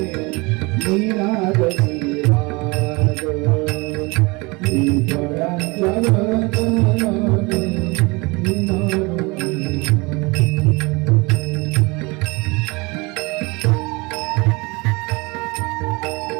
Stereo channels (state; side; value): quieter; left; 26.1 dB